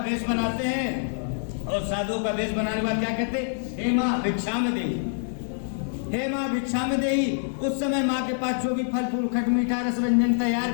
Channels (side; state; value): right; silent; digital silence